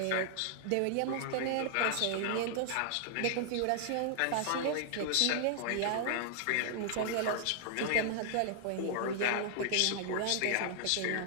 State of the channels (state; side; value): different; both; correlation 0.00